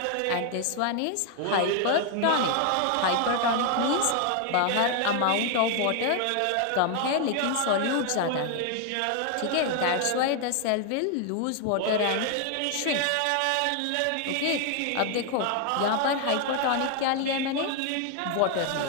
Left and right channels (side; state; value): both; different; correlation 0.00